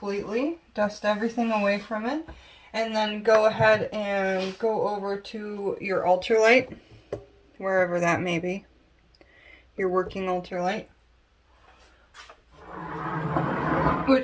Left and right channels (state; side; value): identical; both; correlation 1.00